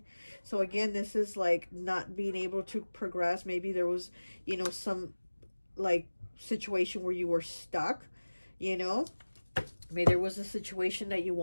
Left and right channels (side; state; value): both; inverted; correlation -1.00